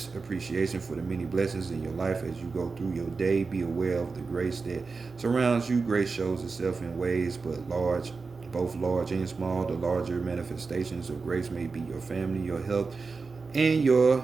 appreciation for the many blessings in your life as you go through your day. Be aware of the grace that surrounds you. Grace shows itself in ways both large and small. The larger manifestations of grace may be your family, your health, and your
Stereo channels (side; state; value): left; quieter; 4.4 dB